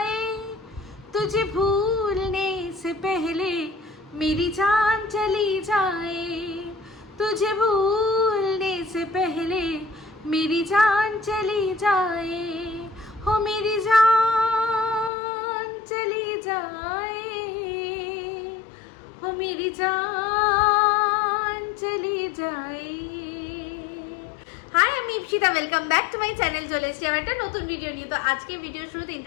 तुझे भूलने से पहले मेरी जान चली जाए, तुझे भूलने से पहले मेरी जान चली जाए, हो मेरी जान चली जाए, हो मेरी जान चली जाए। হাই, আমি Ipsita, welcome back to my channel. চলে এসেছি আমার একটা নতুন ভিডিও নিয়ে। তো আজকে ভিডিওর শুরুতে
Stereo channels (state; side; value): drops out; right; at 15.1 s